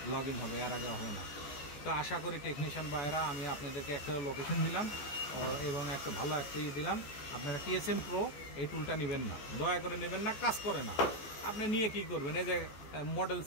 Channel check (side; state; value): right; late; 14 ms